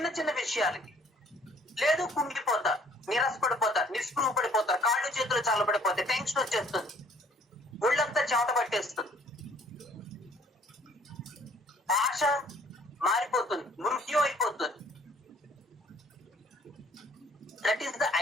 చిన్న విషయాలకి. లేదు కుంగిపోతారు, నిరాశపడిపోతారు, నిస్పృహ పడిపోతారు, కాళ్ళు చేతులు చల్లబడిపోతాయి, టెన్షన్ వచ్చేస్తుంది, ఒళ్ళంతా చెమట పట్టేస్తుంది, భాష మారిపోతుంది, మృత్యు అయిపోతుంది. That is the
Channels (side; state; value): both; normal; correlation 0.59